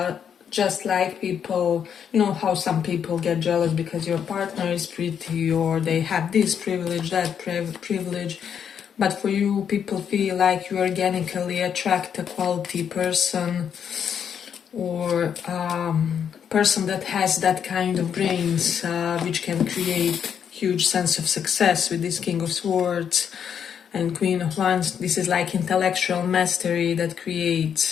just like people, you know how some people get jealous because your partner is pretty, or they have this privilege, that privilege. But for you, people feel like you organically attract a quality person, or person that has that kind of brains, which can create huge sense of success with this King of Swords and Queen of Wands. This is like intellectual mastery that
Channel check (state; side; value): quieter; right; 8.0 dB